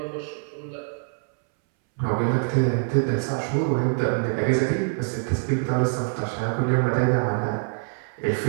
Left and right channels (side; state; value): left; silent; 62 dB below the other